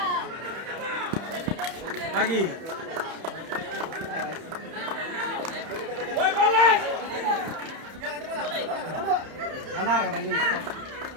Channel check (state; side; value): late; left; 31 ms